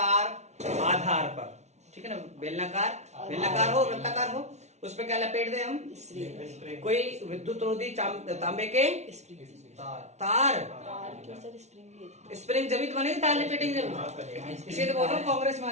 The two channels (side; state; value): left; late; 0.32 ms